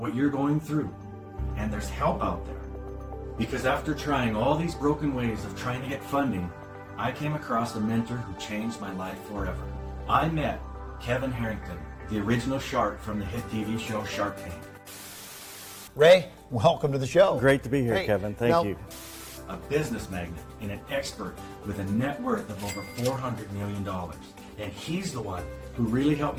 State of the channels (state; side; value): identical; both; correlation 1.00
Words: you're going through, and there's help out there. Because after trying all these broken ways of trying to get funding, I came across a mentor who changed my life forever. I met Kevin Harrington, the original shark from the hit TV show Shark Tank. Ray, welcome to the show. Great to be here, Kevin. Thank you. A business magnate and an expert with a net worth of over $400 million. And he's the one who really helped